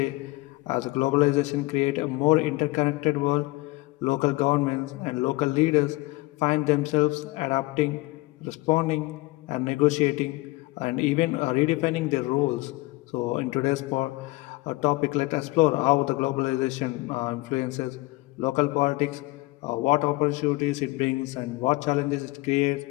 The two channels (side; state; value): right; quieter; 21.9 dB